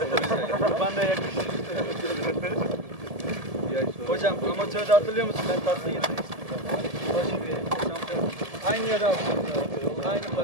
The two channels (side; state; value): left; late; 1.7 ms